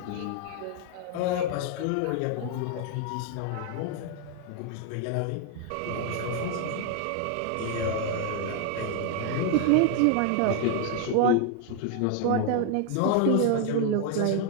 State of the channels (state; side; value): different; both; correlation 0.00